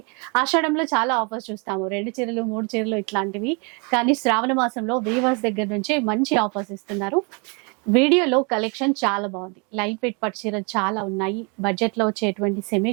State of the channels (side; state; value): left; quieter; 33.3 dB